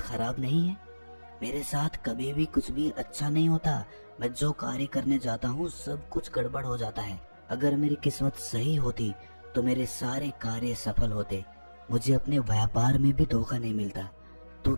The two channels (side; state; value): both; inverted; correlation -1.00